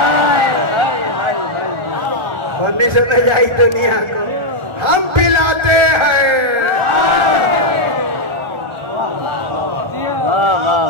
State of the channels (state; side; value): late; left; 1.4 ms